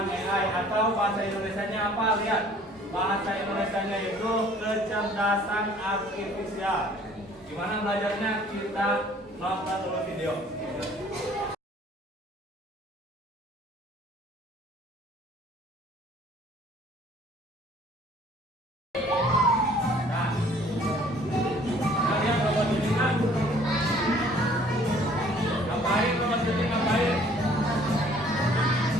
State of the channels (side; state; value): both; normal; correlation 0.55